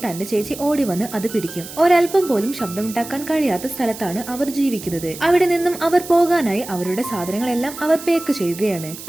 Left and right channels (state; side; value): noise; right; hiss, 13 dB below the sound